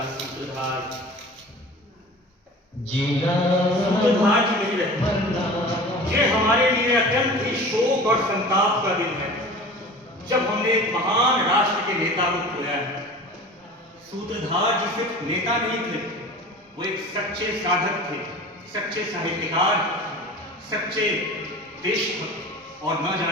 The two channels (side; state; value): both; normal; correlation 0.38